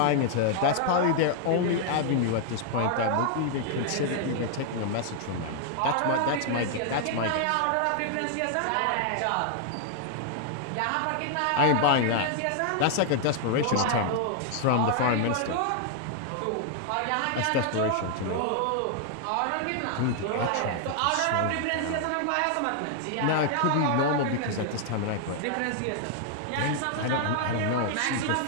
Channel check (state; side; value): different; both; correlation 0.00